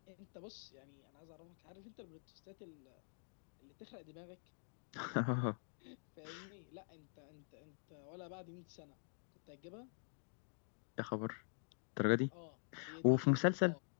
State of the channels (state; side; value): silent; right; digital silence